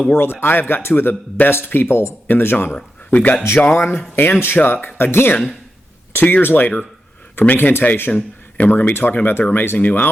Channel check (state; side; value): normal; both; correlation 0.89